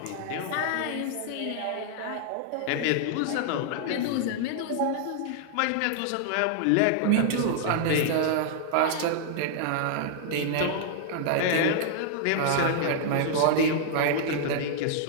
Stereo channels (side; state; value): both; different; correlation -0.01